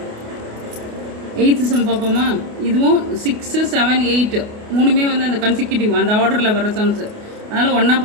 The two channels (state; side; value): late; left; 28 ms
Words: Eighth some பார்ப்போமா? இதுவும் 6, 7, 8 மூணுமே வந்து அந்த கன்சிக்யூட்டிவ் அந்த ஆர்டரில் வர சம்ஸு, அதனால் ஒன்றா